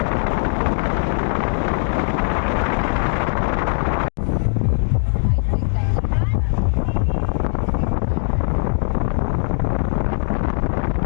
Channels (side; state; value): right; silent; digital silence